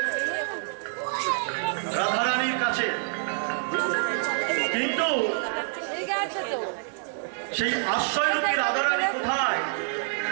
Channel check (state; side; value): silent; left; 60 dB below the other